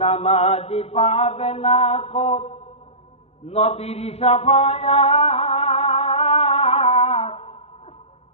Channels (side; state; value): right; late; 0.30 ms